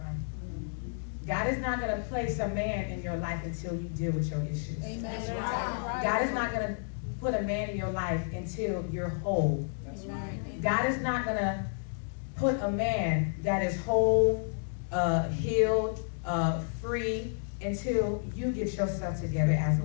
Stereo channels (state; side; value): silent; right; digital silence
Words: God is not going to place a man in your life until you deal with your issues. Amen. God is not going to put a man in your life until you're whole. That's right. God is not going to put a man that is whole, healed, free, until you get yourself together as a